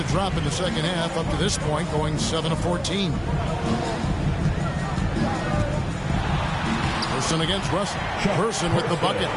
drop in the second half up to this point, going 7 of 14. Person against Russell. Person with the bucket.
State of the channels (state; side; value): identical; both; correlation 1.00